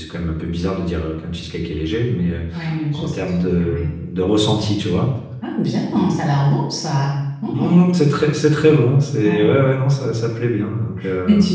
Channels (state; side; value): identical; both; correlation 1.00